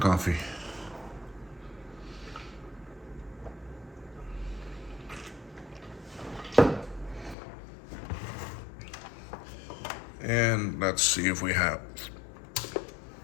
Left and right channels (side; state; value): right; drops out; at 7.4 s